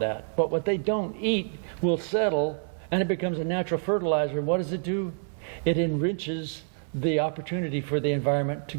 But what they don't eat will settle, and it becomes a natural fertilizer. What does it do? It enriches the opportunity for the environment to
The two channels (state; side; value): silent; left; 60 dB below the other